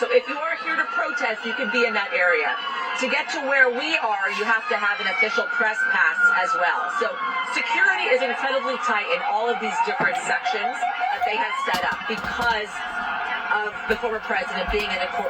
So if you are here to protest, you can be in that area. To get to where we are, you have to have an official press pass as well. So security is incredibly tight in all of these different sections that they have set up because of the former president being in the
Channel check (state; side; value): identical; both; correlation 1.00